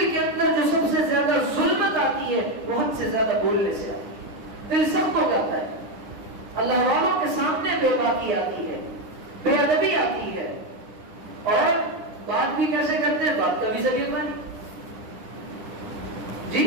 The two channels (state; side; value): late; left; 9.9 ms